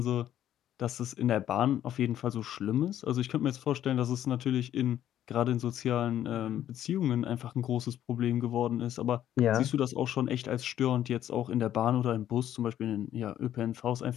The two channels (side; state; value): right; quieter; 11.4 dB